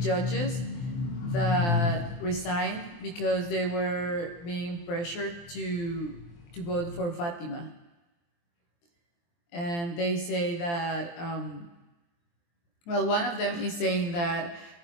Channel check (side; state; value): right; late; 23 ms